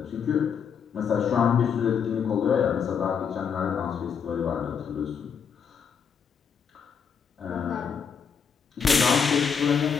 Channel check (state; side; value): quieter; right; 6.8 dB